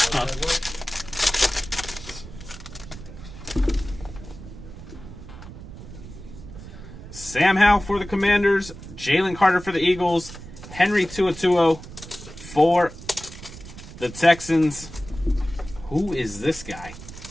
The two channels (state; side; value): noise; right; rumble, 14 dB below the sound